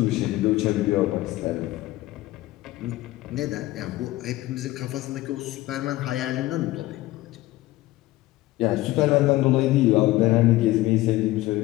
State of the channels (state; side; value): quieter; right; 17.6 dB